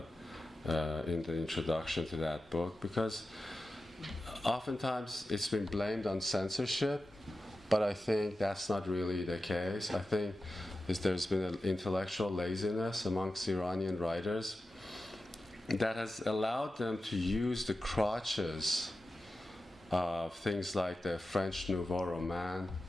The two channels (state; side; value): normal; both; correlation 0.93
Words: introduction to that book, because oftentimes it's been blamed on censorship, but I think that's not really the case. I think there's been an intellectual laziness amongst Iranian writers that has allowed them to use the crutches of things like the French Nouveau Roman,